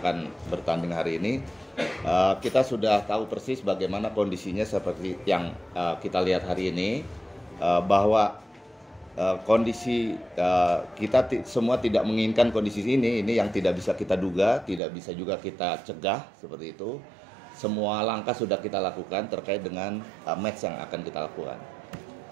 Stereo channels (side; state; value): left; drops out; at 14.8 s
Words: bertanding hari ini. Kita sudah tahu persis bagaimana kondisinya seperti yang kita lihat hari ini, bahwa kondisi kita semua tidak menginginkan kondisi ini yang tidak bisa kita duga, tidak bisa juga kita cegah seperti itu. Semua langkah sudah kita lakukan terkait dengan match yang akan kita lakukan.